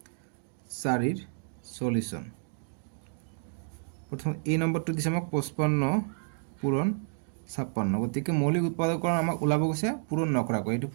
4 ৰ সলিউশন প্ৰথম এই নম্বৰটো দিছে আমাক 55 পূৰণ 56 গতিকে মৌলিক উৎপাদকৰণ আমাক ওলাব গৈছে পূৰণ নকৰাকৈ এটো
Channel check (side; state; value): left; silent; digital silence